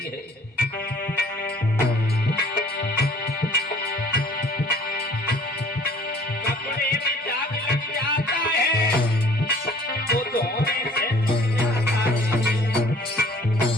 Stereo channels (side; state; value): both; normal; correlation 0.54